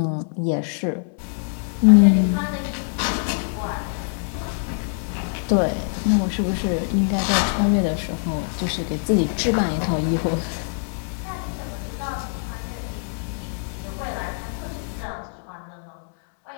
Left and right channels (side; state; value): right; silent; 63 dB below the other